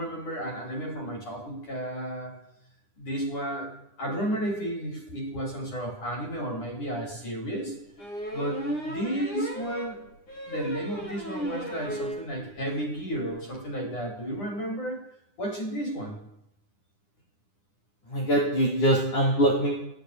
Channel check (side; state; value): right; late; 9.9 ms